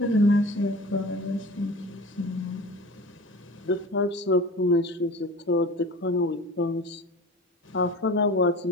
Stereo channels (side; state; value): both; normal; correlation 0.36